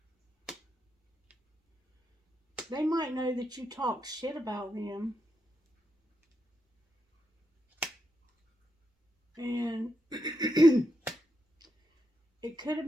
They might know that you talk shit about them. And it could have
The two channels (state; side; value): normal; both; correlation 0.84